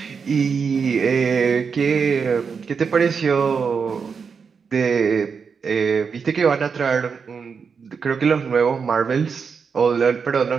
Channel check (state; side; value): quieter; left; 5.8 dB